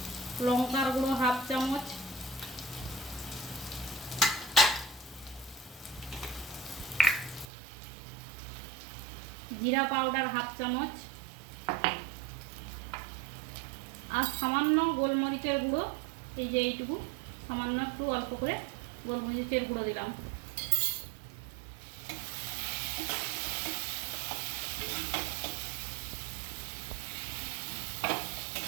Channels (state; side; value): drops out; left; at 7.5 s